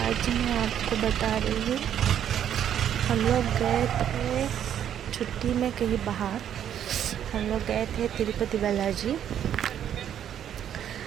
मैं आपको बता रही हूँ, हम लोग गए थे छुट्टी में कहीं बाहर। हम लोग गए थे तिरुपति बालाजी,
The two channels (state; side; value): quieter; left; 9.8 dB